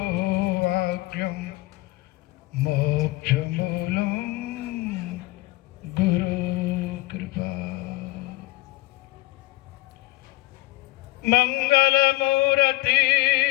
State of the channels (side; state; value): right; quieter; 19.6 dB